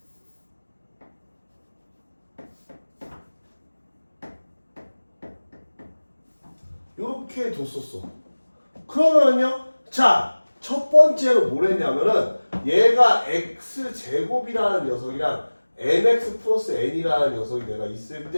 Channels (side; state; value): both; inverted; correlation -1.00